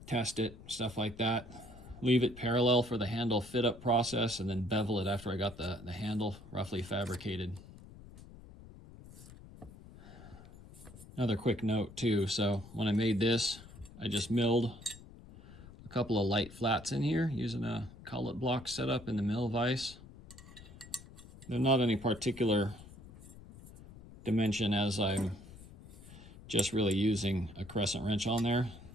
test it, stuff like that. Leave it parallel for the handle fit up process, and then bevel it after I got the handle roughly fabricated. Another quick note too, so when I made this, I just milled a couple of light flats in here using a collet block setup in the mill vise. They're not any particular dimension, as I'm just really using a crescent wrench on there.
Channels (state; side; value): noise; left; rumble, 18 dB below the sound